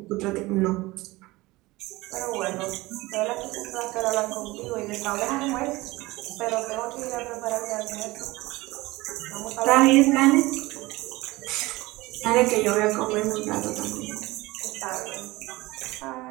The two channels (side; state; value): left; quieter; 20.5 dB